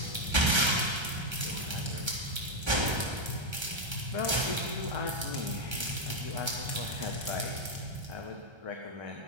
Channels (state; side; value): late; left; 1.3 ms